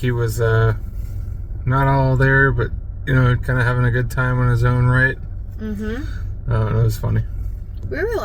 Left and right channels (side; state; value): both; identical; correlation 1.00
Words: was not all there, but you know, kind of having a good time on his own right. It was funny. We were